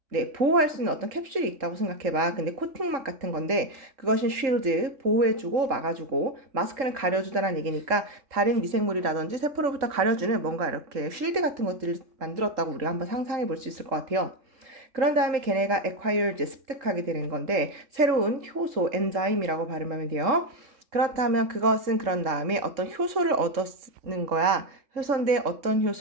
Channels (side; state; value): left; late; 3.7 ms